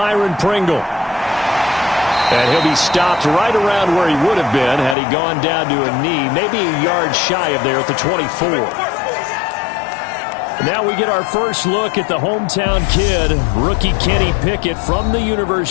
Pringle. And he'll be stopped right around where he would have been had he gone down to a knee, maybe a yard shy of there at the 24. Now we get our first look at the hometown kid, rookie Kenny Pickett from the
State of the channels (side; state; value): right; drops out; at 5.0 s